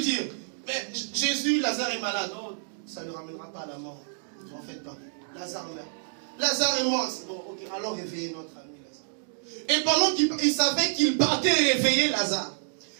dire, mais Jésus, Lazare est malade. Non, ça ne le ramènera pas à la mort. En fait pas. Lazare meurt. Lazare est mort. Bon, ok, alors réveillez notre ami Lazare. Et pendant qu'il savait qu'il partait réveiller Lazare,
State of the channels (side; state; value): left; silent; digital silence